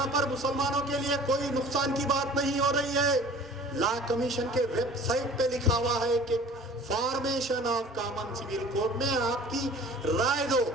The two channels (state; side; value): normal; both; correlation 0.45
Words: पर मुसलमानों के लिए कोई नुकसान की बात नहीं हो रही है। लॉ कमीशन के वेबसाइट पे लिखा हुआ है कि formation of common civil code में आपकी राय दो,